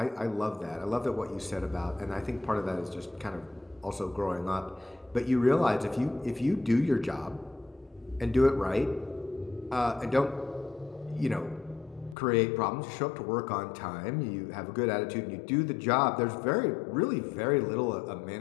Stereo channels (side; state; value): right; drops out; at 12.2 s